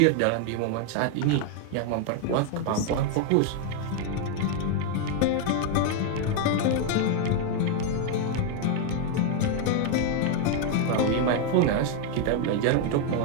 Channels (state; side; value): different; both; correlation 0.00